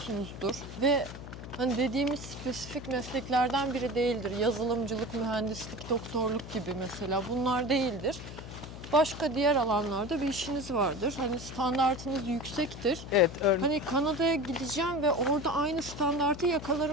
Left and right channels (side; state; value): left; noise; hum, 12 dB below the sound